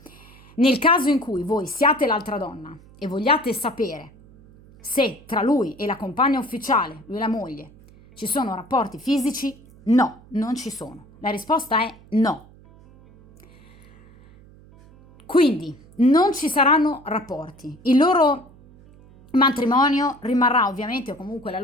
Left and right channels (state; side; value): noise; right; hum, 24 dB below the sound